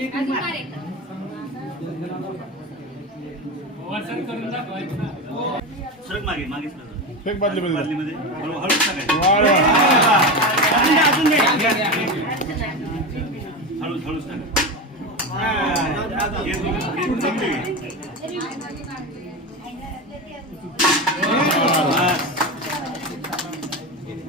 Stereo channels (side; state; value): both; normal; correlation 0.20